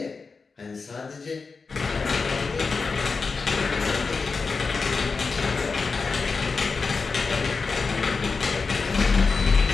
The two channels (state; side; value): quieter; right; 4.6 dB